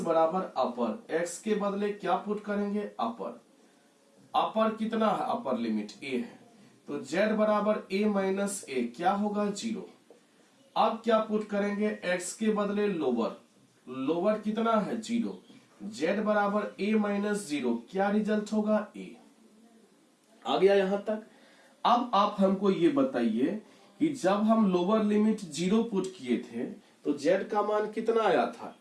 अपर। x के बदले क्या पुट करेंगे? अपर। अपर कितना है? अपर लिमिट a है, तो z बराबर a माइनस a, क्या होगा? जीरो। अब क्या पुट करेंगे? x के बदले लोअर। लोअर कितना है? जीरो। z बराबर a माइनस जीरो, क्या रिजल्ट होगा? a। आ गया यहां तक। अब आप हमको ये बताइए कि जब हम लोअर लिमिट जीरो पुट किए थे तो z का मान कितना आया था?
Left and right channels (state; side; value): identical; both; correlation 1.00